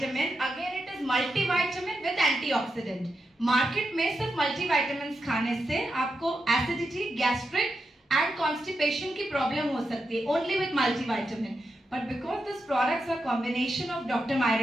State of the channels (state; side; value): normal; both; correlation 0.87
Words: again it is multivitamin with antioxidant. Market में सिर्फ मल्टीविटामिन खाने से आपको एसिडिटी, गैस्ट्रिक एंड कॉन्स्टिपेशन की प्रॉब्लम हो सकती है only with multivitamin, but because this products are combination of doctor